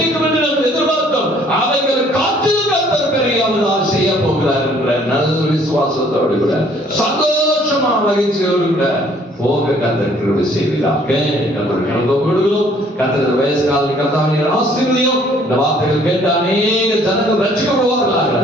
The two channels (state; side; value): normal; both; correlation 0.60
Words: என்று நாம் எதிர்பார்த்தோம். அவைகள் காற்றில் கர்த்தர் பெரியாவதா செய்ய போகிறார் என்ற நல்ல விசுவாசத்தோடு கூட சந்தோஷமா மகிழ்ச்சியோடு கூட போக கர்த்தர் கிருபை செய்வீராக. கர்த்தர் கடந்து கொடுக்கிறோம். கர்த்தர் வயசு காலத்தில் கர்த்தாவின் ஆசீர்வதியும். இந்த வார்த்தைகள் கேட்ட அநேக ஜனங்கள் ரட்சிக்கப்படுவார்களாக.